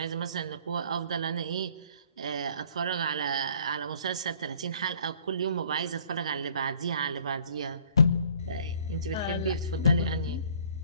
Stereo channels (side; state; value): both; inverted; correlation -0.55